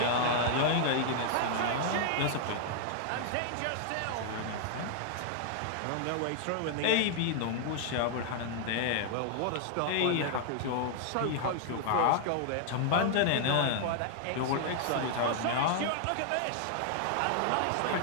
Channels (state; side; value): different; both; correlation 0.00